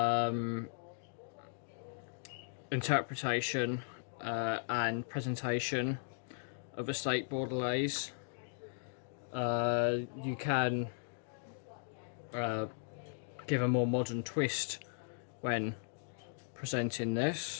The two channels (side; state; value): right; silent; digital silence